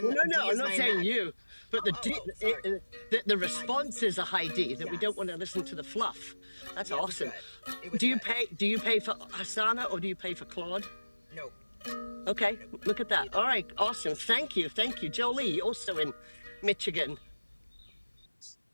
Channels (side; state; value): both; inverted; correlation -1.00